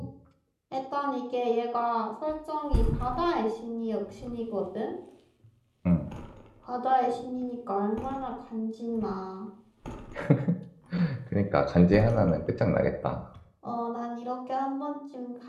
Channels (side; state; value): both; identical; correlation 1.00